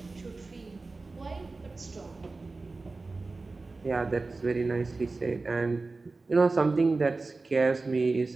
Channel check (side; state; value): left; quieter; 3.6 dB